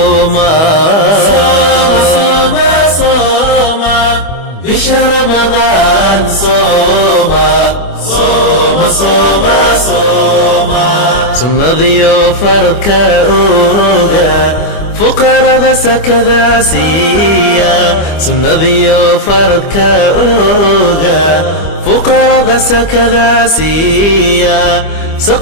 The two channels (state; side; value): late; right; 25 ms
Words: صوم بشهر رمضان صوم صوم صوم صوم ثم ضيوف فرد فقراء ذا كذا سيا ثم ضيوف فرد فقراء ذا كذا سيا